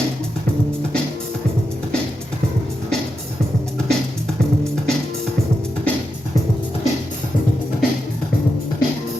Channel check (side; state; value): both; normal; correlation 0.87